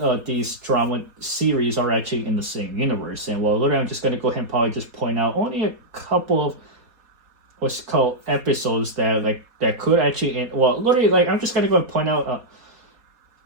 these drama series are actually in the same universe. And well, literally, I'm just going to go ahead and probably just point out only a couple of what's called episodes that could actually well, literally, like, I'm just going to go and point out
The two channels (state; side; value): late; left; 4.2 ms